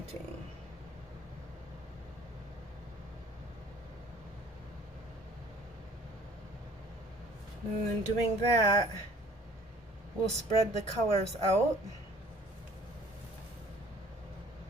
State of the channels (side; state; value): both; normal; correlation 0.53